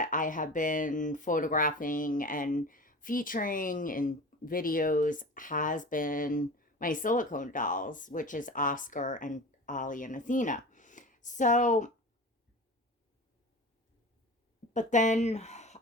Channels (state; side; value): normal; both; correlation 0.34